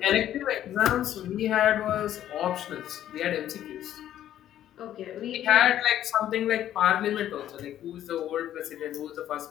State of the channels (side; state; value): right; quieter; 11.7 dB